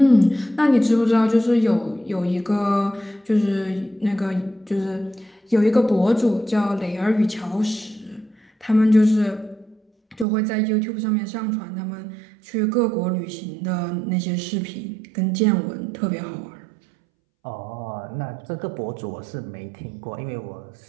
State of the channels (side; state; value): left; drops out; at 10.2 s